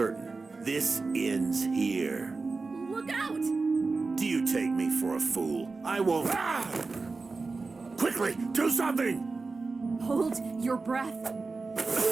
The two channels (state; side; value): quieter; left; 4.0 dB